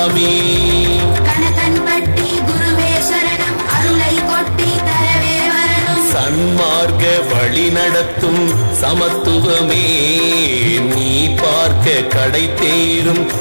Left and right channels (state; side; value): inverted; both; correlation -1.00